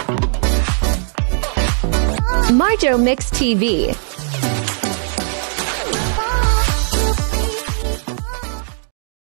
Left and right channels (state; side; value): silent; left; 66 dB below the other